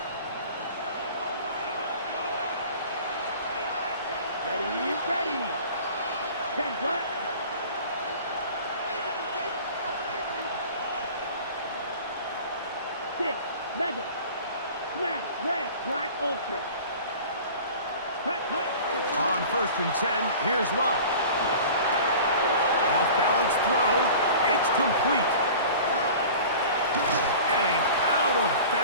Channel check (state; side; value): inverted; both; correlation -0.41